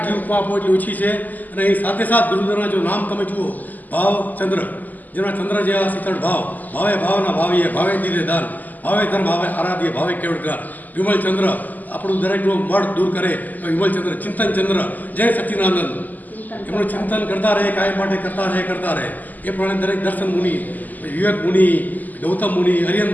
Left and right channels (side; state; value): right; late; 0.083 ms